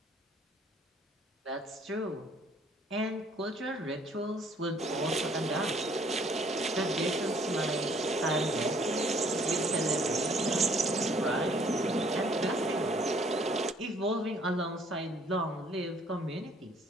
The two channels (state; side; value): normal; both; correlation 0.60